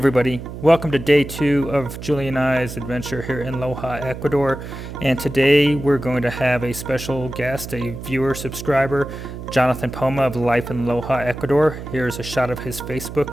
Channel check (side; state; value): right; noise; hum, 10 dB below the sound